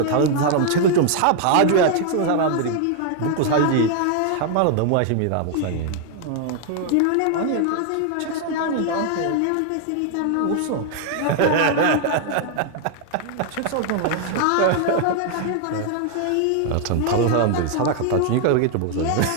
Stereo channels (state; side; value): different; both; correlation 0.00